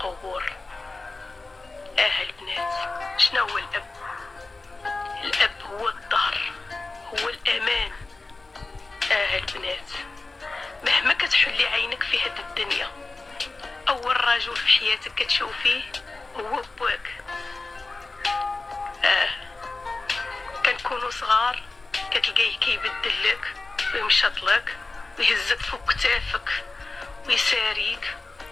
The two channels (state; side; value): quieter; right; 3.4 dB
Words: البنات، شنو هو الاب؟ الاب هو الظهر، هو الامان. البنات، مهما كتحلي عينك في هاد الدنيا، اول رجل في حياتك كتشوفيه هو بواك. كنكونوا صغار كتلقايه كيبدل لك ويمشط لك ويهزك فوق كتافك ويساريك